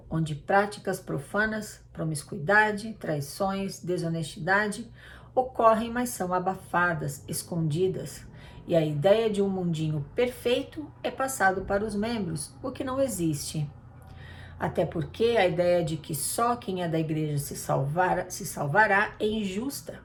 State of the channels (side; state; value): both; identical; correlation 1.00